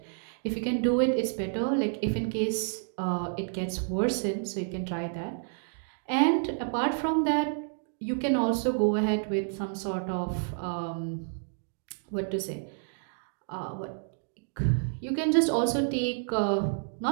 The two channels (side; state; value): left; silent; digital silence